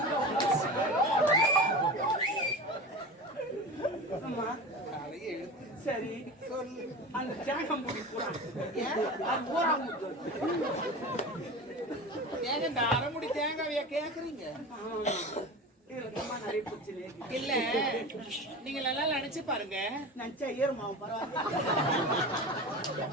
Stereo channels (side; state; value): both; normal; correlation 0.30